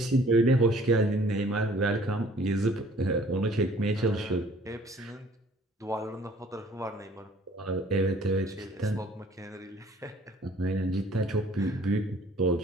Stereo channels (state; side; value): normal; both; correlation 0.55